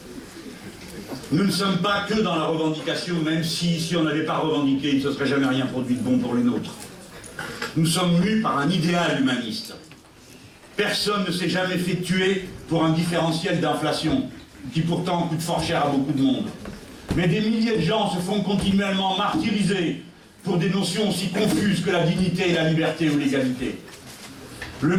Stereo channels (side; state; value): both; identical; correlation 1.00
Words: Nous ne sommes pas que dans la revendication, même si on n'avait pas revendiqué, il ne se serait jamais rien produit de bon pour les nôtres. Nous sommes mus par un idéal humaniste. Personne ne s'est jamais fait tuer pour un différentiel d'inflation, qui pourtant coûte fort cher à beaucoup de monde. Mais des milliers de gens se font continuellement martyriser pour des notions aussi confuses que la dignité et la liberté ou l'égalité. Le